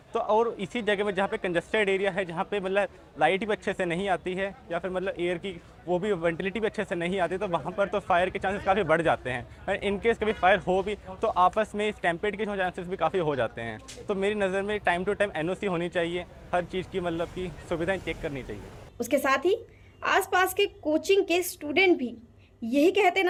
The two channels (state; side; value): identical; both; correlation 1.00